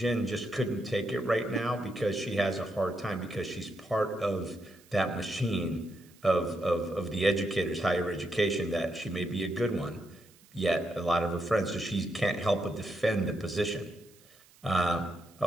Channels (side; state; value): right; noise; hiss, 27 dB below the sound